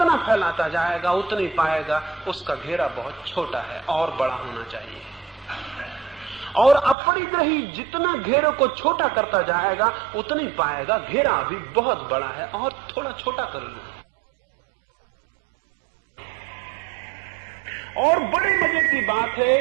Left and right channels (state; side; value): drops out; left; at 7.0 s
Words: फैलाता जाएगा उतना ही पाएगा उसका घेरा बहुत छोटा है और बड़ा होना चाहिए। और अपरिग्रही जितना घेरे को छोटा करता जाएगा उतना ही पाएगा घेरा अभी बहुत बड़ा है और थोड़ा छोटा कर लूं। और बड़े मजे की बात